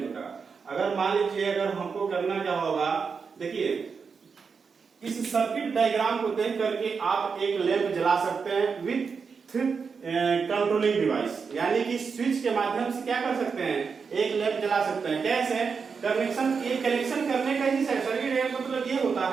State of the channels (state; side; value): quieter; left; 5.5 dB